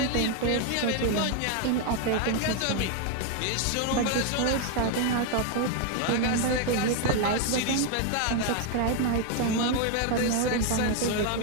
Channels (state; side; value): different; both; correlation 0.01